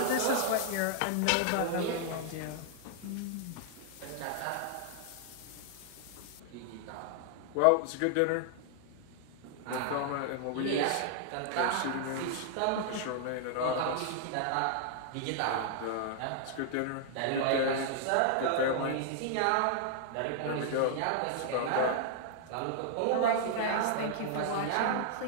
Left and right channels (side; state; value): both; different; correlation -0.01